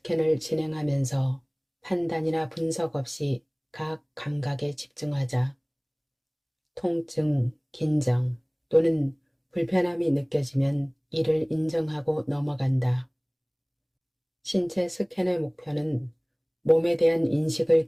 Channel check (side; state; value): both; identical; correlation 1.00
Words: 진행하면서 판단이나 분석 없이 각 감각에 집중하자. 통증, 긴장 또는 불편함이 느껴지면 이를 인정하고 넘어간다. 신체 스캔의 목표는 몸에 대한 인식을